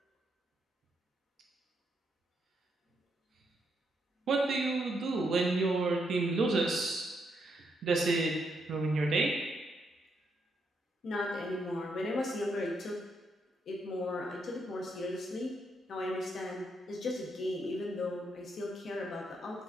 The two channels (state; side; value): normal; both; correlation 0.78